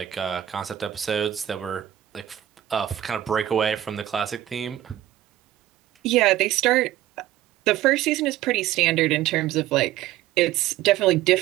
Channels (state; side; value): quieter; left; 13.1 dB